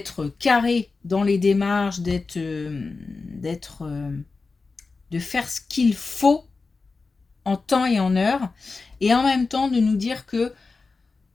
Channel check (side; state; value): right; quieter; 4.1 dB